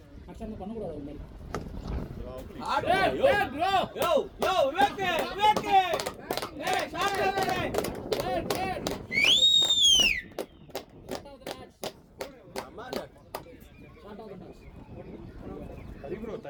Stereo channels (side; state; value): both; identical; correlation 1.00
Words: ஆக்சுவலாக பண்ணக்கூடாது அது மாதிரி. சரி ப்ரோ